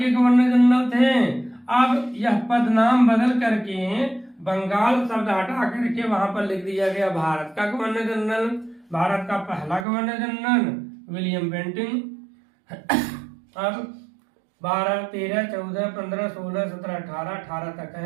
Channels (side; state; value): left; drops out; at 9.9 s